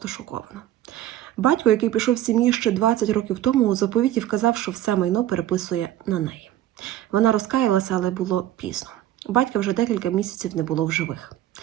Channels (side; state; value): left; quieter; 12.8 dB